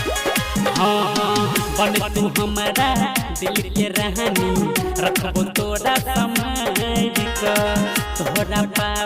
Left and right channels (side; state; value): both; identical; correlation 1.00